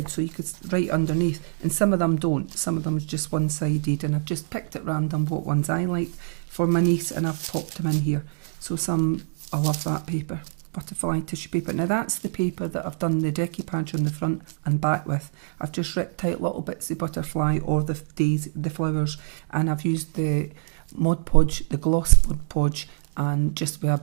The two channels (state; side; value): silent; left; digital silence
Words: so you could write underneath. And some of them don't. Some of them is just one-sided, and I've just picked at random what ones I like for my niece, and I've popped them in here. So I love that paper. Butterfly tissue paper. Now that's the paper that I've done the decoupage on the front and back with. I've just ripped out little bits of butterfly or the flowers, and I've used the Mod Podge, the gloss Mod Podge, and just with